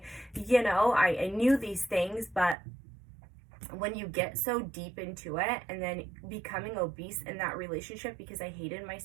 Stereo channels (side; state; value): left; drops out; at 2.6 s